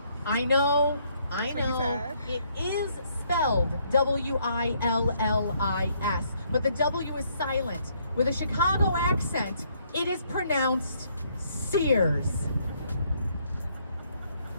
I know, it is spelled W-I-L-L-I-S, but the W is silent. With a Chicago accent, it is pronounced Sears.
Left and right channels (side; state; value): both; inverted; correlation -0.69